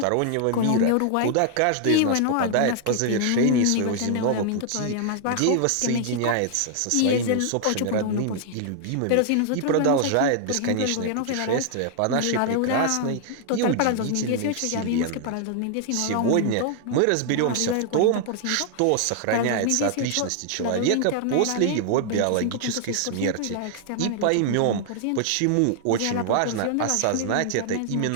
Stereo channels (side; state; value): both; different; correlation 0.00